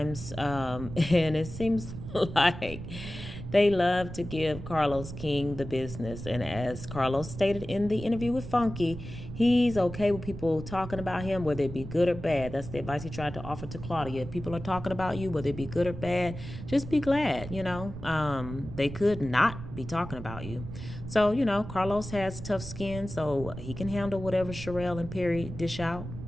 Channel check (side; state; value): right; noise; rumble, 10 dB below the sound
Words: and it seems like They love to give Carlos King the business. And as Carlos stated in the interview with Funky, he's okay with people talking about him, whether it be good or bad. That's the advice he tried to offer to Claudia. If people are talking about you, whether it be good or bad, just be glad, They could not be talking about you. So, Carlos has tough skin, so he can handle whatever Sharrelle and Perry dish out.